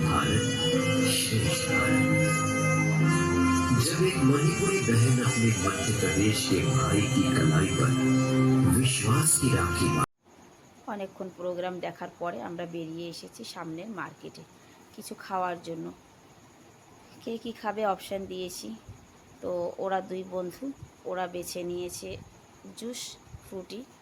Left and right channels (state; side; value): identical; both; correlation 1.00